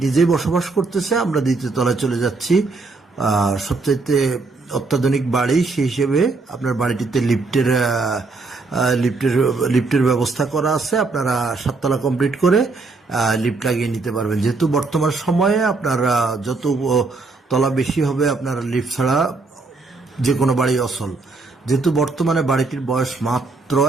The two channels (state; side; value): quieter; left; 3.7 dB